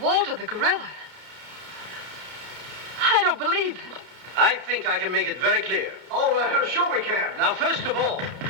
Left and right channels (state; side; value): late; left; 31 ms